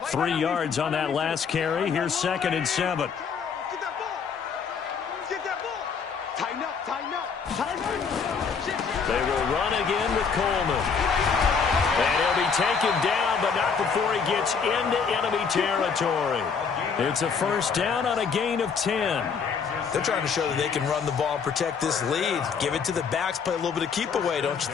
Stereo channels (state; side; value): quieter; right; 6.0 dB